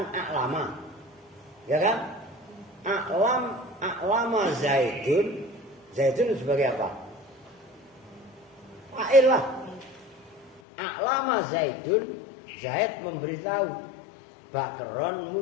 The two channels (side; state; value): right; drops out; at 10.6 s